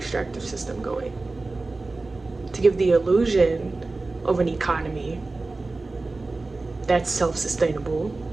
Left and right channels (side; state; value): left; quieter; 3.4 dB